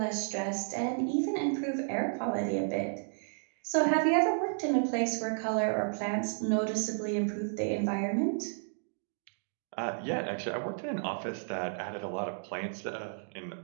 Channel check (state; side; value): silent; left; digital silence